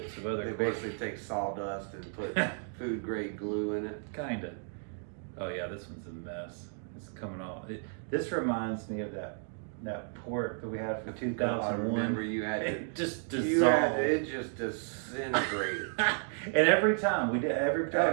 of other. They basically take sawdust and put food grade glue in it. Kinda. Oh yeah, this one's a mess. It's coming off. This reminds me of that port that we had from 2001. I remember you had it just dissolved. It just disintegrated. And every time we did every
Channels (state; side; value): silent; left; 56 dB below the other